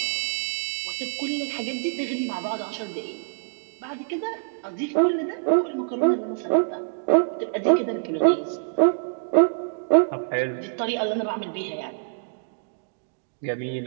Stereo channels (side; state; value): left; silent; digital silence